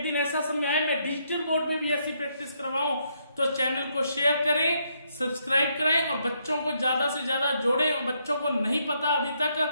दिन ऐसा समय आए मैं डिजिटल बोर्ड पे भी ऐसी प्रैक्टिस करवाऊं, तो चैनल को शेयर करें, सब्सक्राइब करें, और बच्चों को ज्यादा से ज्यादा जोड़ें। और बच्चों को नहीं पता अभी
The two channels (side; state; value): both; inverted; correlation -0.75